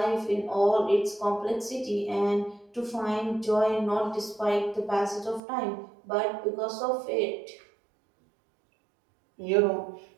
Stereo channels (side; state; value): left; drops out; at 5.4 s